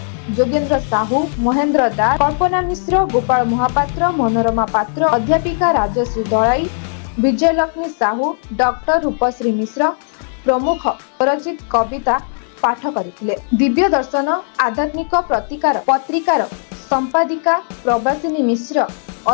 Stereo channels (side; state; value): right; silent; 68 dB below the other